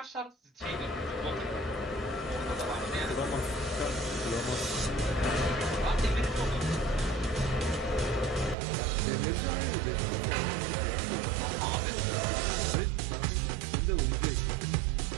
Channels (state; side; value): drops out; left; at 8.6 s